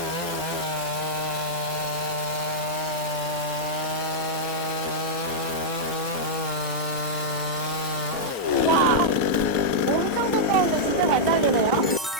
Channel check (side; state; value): both; normal; correlation -0.07